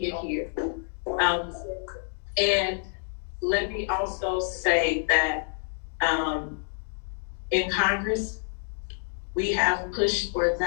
it here. And let me also say that in Congress, we have pushed for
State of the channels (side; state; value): right; silent; 60 dB below the other